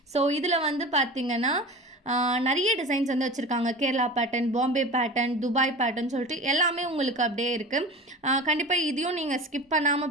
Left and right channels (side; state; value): both; normal; correlation 0.34